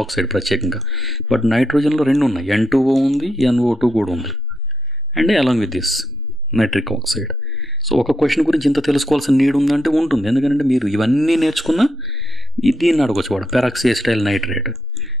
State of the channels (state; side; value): normal; both; correlation 0.83